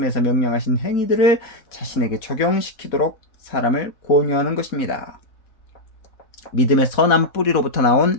명령하신 행위들을 자신에게 적용시키도록 사람을 권유하는 것입니다. 믿음의 선한 뿌리로부터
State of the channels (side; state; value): right; late; 4.2 ms